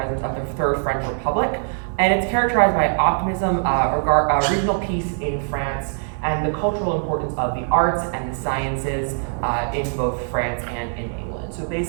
of the Third French Republic. And it's characterized by optimism, regional peace in France, and the cultural importance of the arts and the sciences in both France and in England. So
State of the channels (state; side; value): silent; left; digital silence